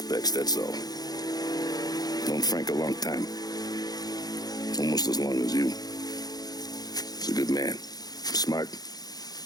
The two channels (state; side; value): late; right; 0.19 ms